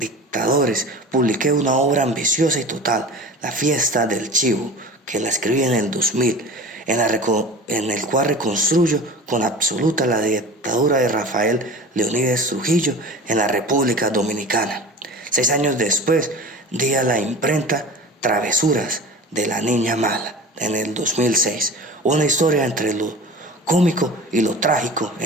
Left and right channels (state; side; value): normal; both; correlation 0.37